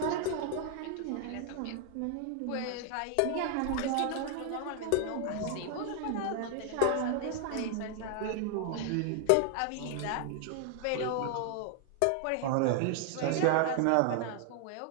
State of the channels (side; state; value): both; different; correlation 0.00